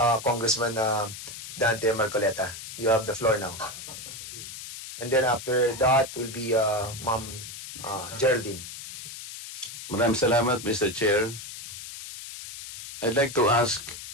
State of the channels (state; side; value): noise; left; hiss, 11 dB below the sound